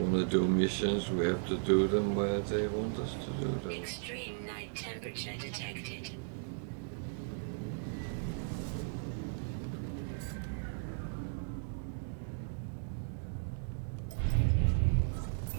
want to do missions, we have to do them where they want us to do them. Extreme night temperature detected.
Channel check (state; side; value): silent; left; digital silence